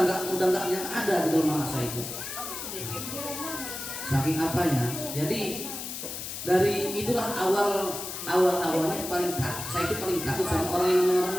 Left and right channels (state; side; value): noise; left; hiss, 7 dB below the sound